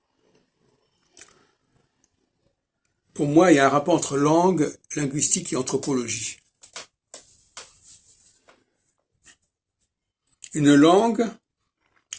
Pour moi, il y a un rapport entre langue, linguistique et anthropologie. Une langue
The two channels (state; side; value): identical; both; correlation 1.00